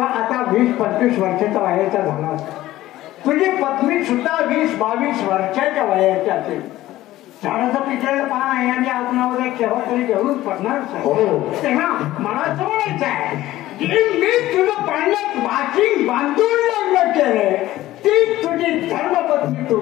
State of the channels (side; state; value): right; quieter; 15.5 dB